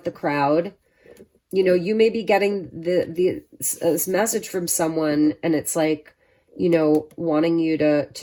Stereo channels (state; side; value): identical; both; correlation 1.00